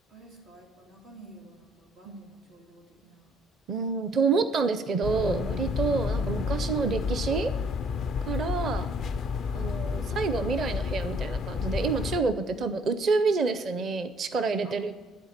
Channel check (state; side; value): normal; both; correlation 0.62